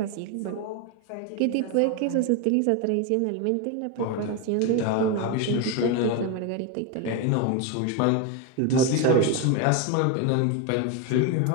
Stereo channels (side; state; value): both; different; correlation 0.02